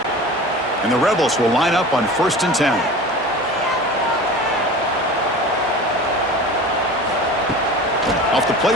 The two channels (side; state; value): both; normal; correlation 0.36